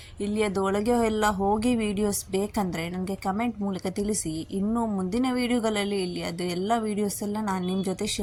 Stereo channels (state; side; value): identical; both; correlation 1.00